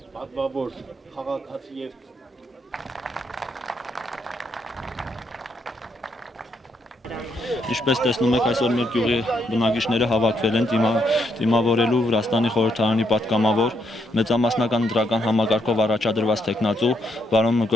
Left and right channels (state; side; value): normal; both; correlation 0.76